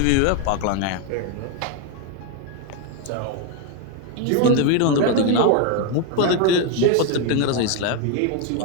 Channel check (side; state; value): both; different; correlation 0.01